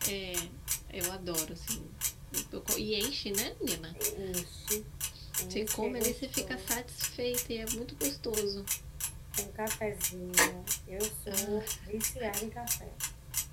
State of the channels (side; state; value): both; identical; correlation 1.00